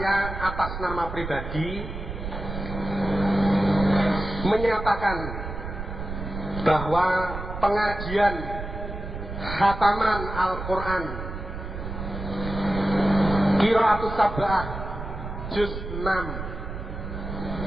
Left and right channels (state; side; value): noise; right; rumble, 7 dB below the sound